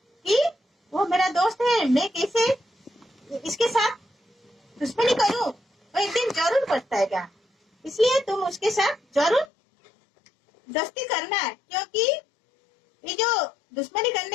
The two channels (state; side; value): drops out; right; at 9.5 s